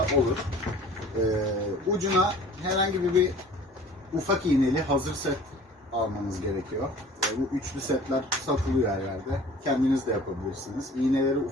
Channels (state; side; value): normal; both; correlation 0.46